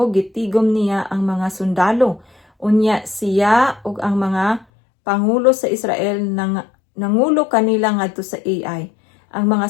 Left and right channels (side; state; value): right; drops out; at 4.7 s